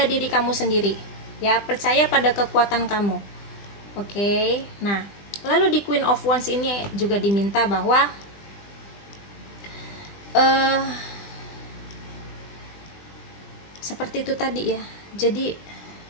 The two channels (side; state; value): right; late; 20 ms